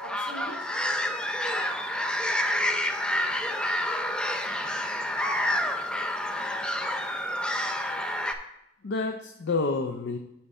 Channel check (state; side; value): normal; both; correlation 0.57